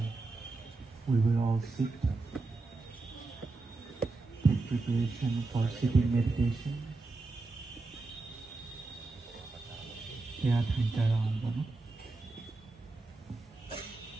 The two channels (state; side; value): quieter; left; 3.5 dB